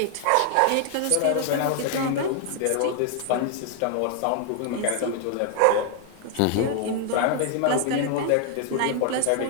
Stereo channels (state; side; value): different; both; correlation 0.00